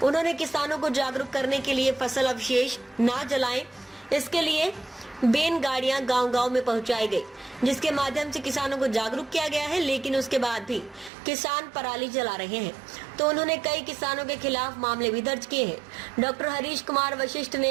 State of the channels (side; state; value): left; drops out; at 11.1 s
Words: उन्होंने किसानों को जागरूक करने के लिए फसल अवशेष ना जलाएं, इसके लिए बैन गाड़ियां गांव-गांव में पहुंचाई गई, जिसके माध्यम से किसानों को जागरूक किया गया है, लेकिन उसके बाद भी किसान पराली जला रहे हैं, तो उन्होंने कई किसानों के खिलाफ मामले भी दर्ज किए हैं। डॉक्टर हरीश कुमार वशिष्ठ